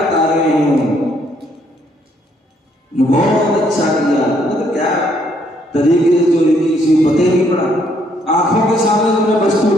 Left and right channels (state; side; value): normal; both; correlation 0.69